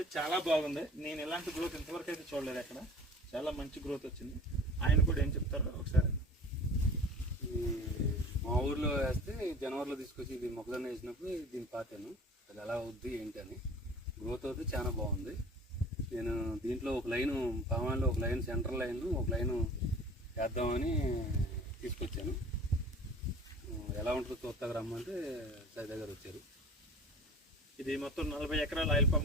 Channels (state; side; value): normal; both; correlation 0.42